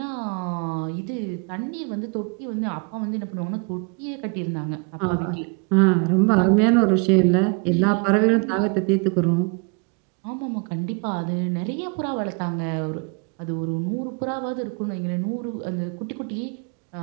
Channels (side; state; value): left; quieter; 32.8 dB